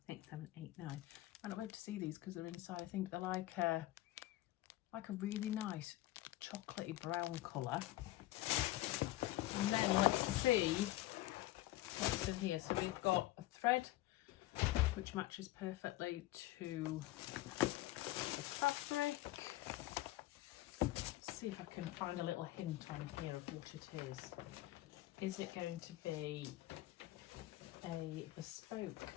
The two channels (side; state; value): right; quieter; 16.7 dB